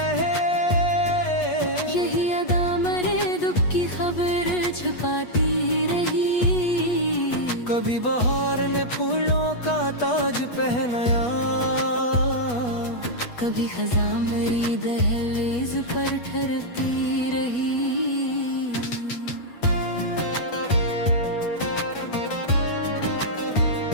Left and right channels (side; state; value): right; late; 8.3 ms